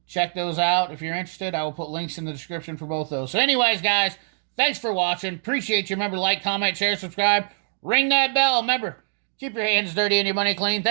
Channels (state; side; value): silent; left; digital silence